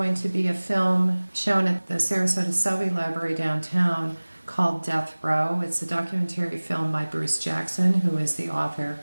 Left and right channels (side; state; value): both; inverted; correlation -1.00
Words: to be a film shown at the Sarasota Selby Library downtown called Death Row. It's a documentary film by Bruce Jackson, who is the author